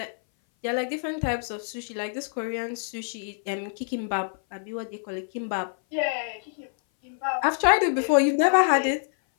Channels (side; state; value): right; silent; 58 dB below the other